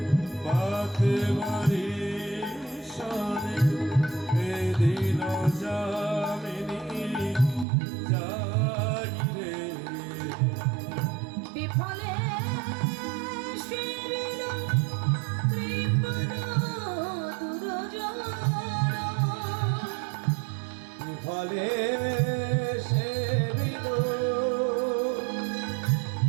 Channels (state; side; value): drops out; left; at 7.7 s